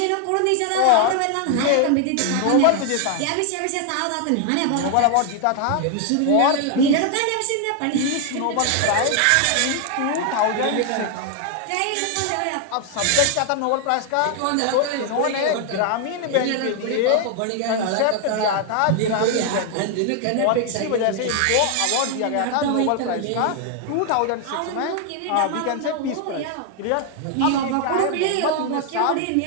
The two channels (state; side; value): different; both; correlation 0.00